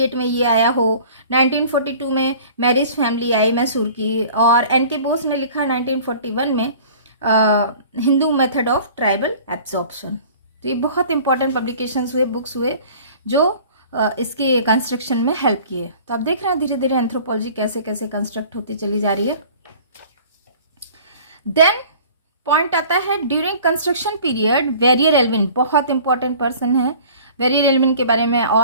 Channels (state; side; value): inverted; both; correlation -0.47